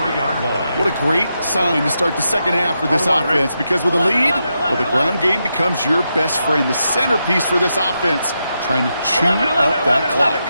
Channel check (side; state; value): both; inverted; correlation -0.85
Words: What a great sign to start the second half for this offense, because with a lead, well, the ground game becomes your best friend, the centerpiece for this offense, trying to chew up that clock.